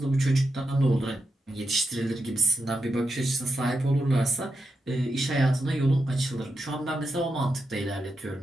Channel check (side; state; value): both; normal; correlation 0.86